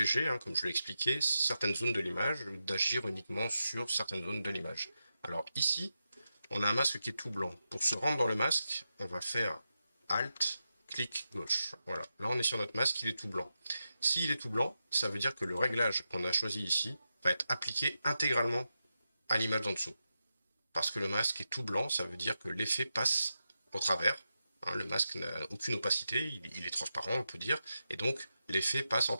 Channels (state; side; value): inverted; both; correlation -0.89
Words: hein, comme je l'ai expliqué, certaines zones de l'image, d'agir uniquement sur certaines zones de l'image. Alors ici, on a un masque qui est tout blanc. Pour se rendre dans le masque, on va faire Alt, clic gauche. Voilà, là on est sur notre masque, il est tout blanc. S'il est tout blanc, ça veut dire que le réglage qu'on a choisi ici va être appliqué intégralement à l'image d'en dessous. Parce que le masque est tout blanc, ça veut dire que l'effet passe au travers. Hein, le masque n'a aucune opacité, il est transparent, on peut dire, et donc l'effet passe